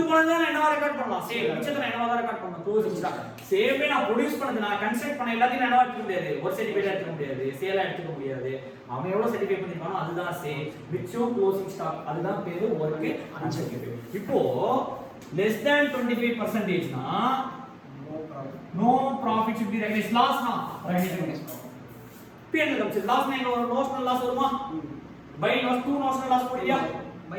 போனதா நான் என்னவா ரெக்கார்ட் பண்ணலாம்? சேல் மிச்சத்தை என்னவா தான் ரெக்கார்ட் பண்ணலாம். Closing stock. சேவே நான் ப்ரொடியூஸ் பண்ணது, நான் கன்ஸ்ட்ரக்ட் பண்ண எல்லாத்தையும் என்னவா எடுக்க முடியாது. ஒரு சர்டிஃபிகேட் எடுக்க முடியாது, சேலா எடுக்க முடியாது. அவன் எவ்வளவு சர்டிஃபை பண்ணிருக்கானோ அதுதான் சேல். மிச்சம் க்ளோசிங் ஸ்டாக். அதுதான் பேரு வொர்க் அன்சர்டிஃபைட். இப்போ less than 25% னா no profit should be recognized. loss னா recognized. P&L கம்ஸ் loss னா எங்க வரும்? நோஷனல் லாஸ் வருமா? பை லாஸ் 2 நோஷனல் லாஸ் போடியா? பை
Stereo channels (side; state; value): both; identical; correlation 1.00